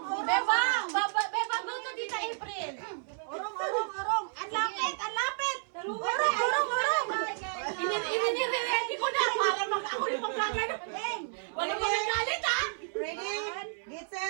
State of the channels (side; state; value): left; silent; 57 dB below the other